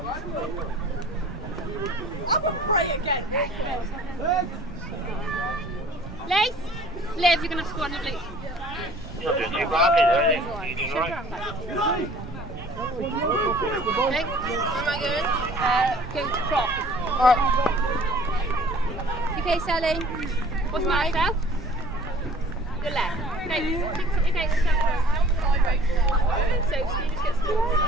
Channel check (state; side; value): normal; both; correlation 0.50